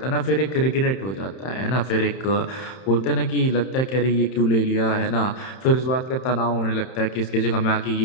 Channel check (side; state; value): right; late; 31 ms